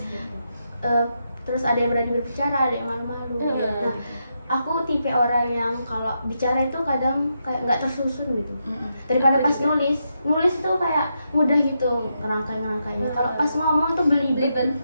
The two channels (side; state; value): both; inverted; correlation -0.83